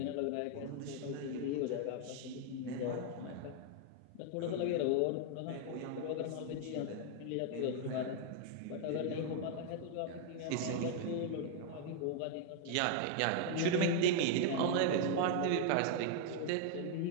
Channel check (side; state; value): both; different; correlation 0.00